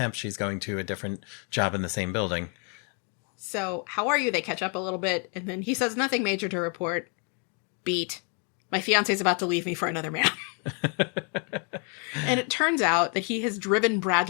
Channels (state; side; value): quieter; right; 38.5 dB